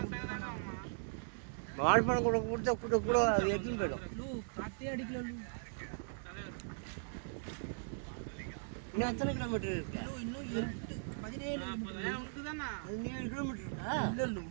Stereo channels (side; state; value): left; silent; digital silence